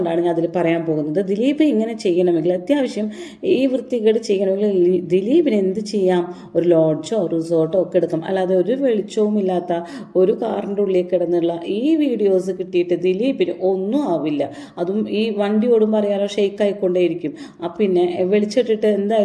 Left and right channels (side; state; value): both; identical; correlation 1.00